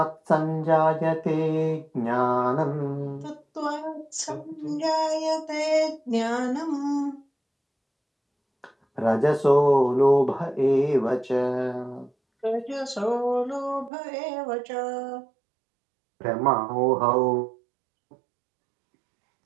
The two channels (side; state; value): left; drops out; at 13.9 s